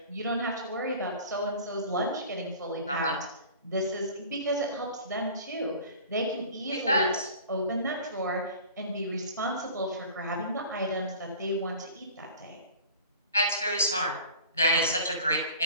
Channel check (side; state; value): both; inverted; correlation -0.43